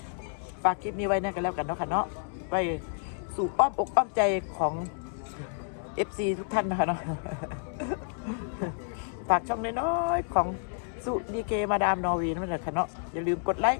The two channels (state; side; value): silent; right; digital silence